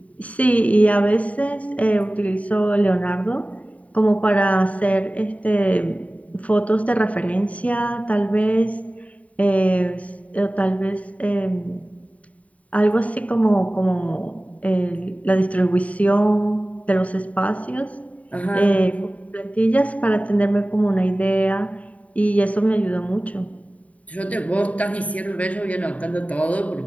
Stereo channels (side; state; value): right; late; 0.068 ms